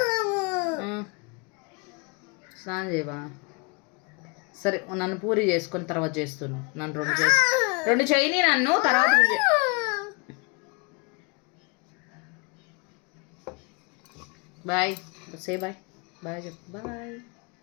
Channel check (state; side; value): quieter; right; 30.7 dB